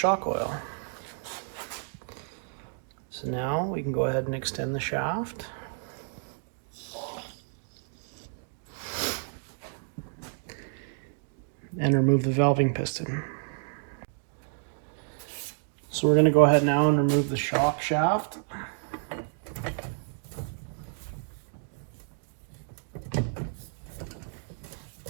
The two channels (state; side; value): silent; left; 58 dB below the other